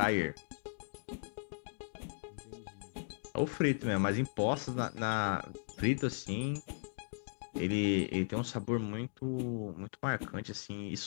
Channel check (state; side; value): silent; right; digital silence